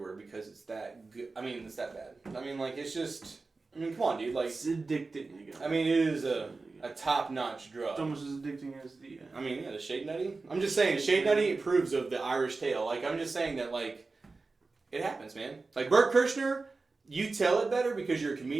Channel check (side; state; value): left; quieter; 3.8 dB